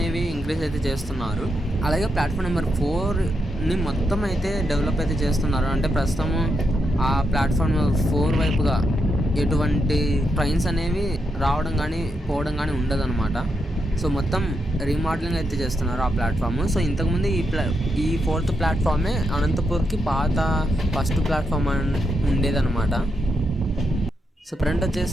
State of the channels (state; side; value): normal; both; correlation 0.83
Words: ఇంక్రీజ్ అయితే చేస్తున్నారు. అలాగే ప్లాట్ఫామ్ నెంబర్ 4ని మొత్తం అయితే డెవలప్ అయితే చేస్తున్నారు. అంటే ప్రస్తుతము ఆ ప్లాట్ఫామ్ నెంబర్ 4 వైపుగా ఎటువంటి ట్రైన్స్ అనేవి రావడం కానీ పోవడం కానీ ఉండదన్నమాట. సో మొత్తం రీమోడలింగ్ అయితే చేస్తున్నారు ఆ ప్లాట్ఫామ్. సో ఇంతకుముందు ఈ 4th ప్లాట్ఫామే అనంతపూర్కి పాత ఫస్ట్ ప్లాట్ఫామ్ ఉండేదన్నమాట. సో ఫ్రంట్